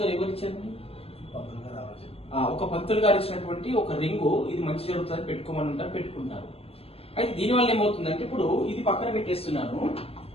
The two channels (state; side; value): late; right; 0.28 ms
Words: ఎవరు ఇచ్చారండి? ఒక పంతులు గారు ఇచ్చినటువంటి ఒక రింగు. ఇది మంచి జరుగుతుంది పెట్టుకోమని ఉంటారు, పెట్టుకుంటారు. అయితే దీనివల్ల ఏమవుతుందంటే, ఇప్పుడు ఇది పక్కన పెట్టేస్తున్నాను.